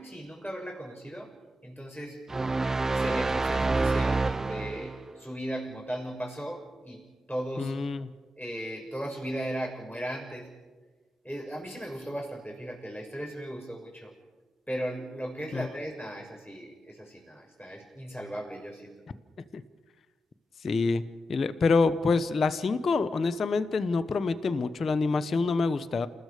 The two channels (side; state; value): both; normal; correlation 0.89